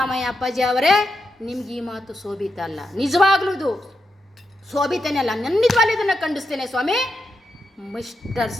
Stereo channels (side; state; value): both; normal; correlation 0.86